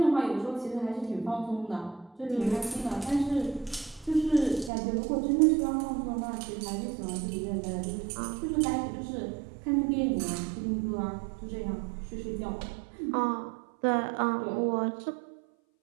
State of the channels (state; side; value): drops out; left; at 4.7 s